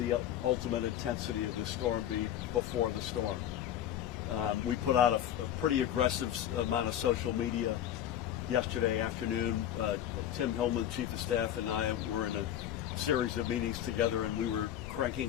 ultimate intensity of the storm be before the storm. We put out a pretty aggressive amount of social media yesterday afternoon. Tim Hillman, Chief of Staff, and I were in a series of meetings together, and we were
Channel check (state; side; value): quieter; right; 11.0 dB